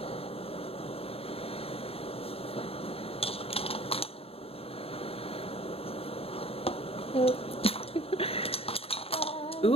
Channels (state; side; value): late; right; 0.28 ms